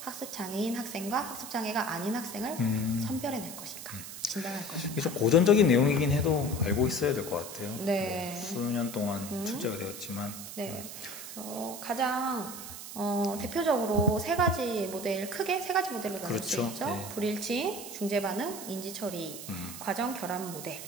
학생과 학습장애가 아닌 학생을 선별해낼 것인가, 진단할 것인가. 이게 좀 고전적인 내용이긴 해도 알고 있어야 될 것 같아요. 네. 수년 동안 출제가 되었지만. 네. 그래서 가장 대표적으로 세 가지 크게 세 가지 모델로 나눌 그렇죠. 수 있죠. 네. 불일치, 중재반응, 인지처리, 과정 결합 모델이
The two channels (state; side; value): noise; right; hiss, 10 dB below the sound